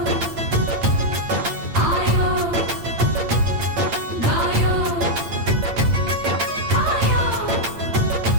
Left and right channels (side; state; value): left; late; 8.7 ms